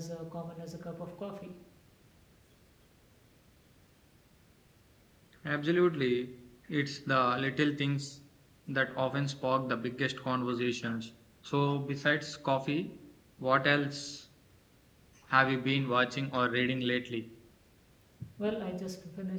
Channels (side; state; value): both; identical; correlation 1.00